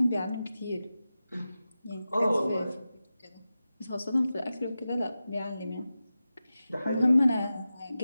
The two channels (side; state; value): both; inverted; correlation -0.93